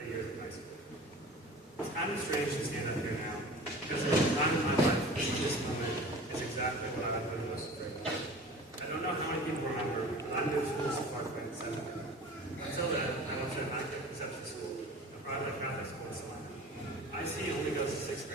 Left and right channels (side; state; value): both; normal; correlation 0.40